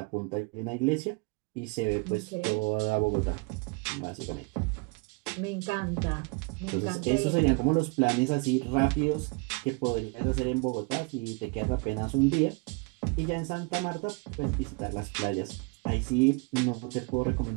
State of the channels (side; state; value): left; quieter; 30.4 dB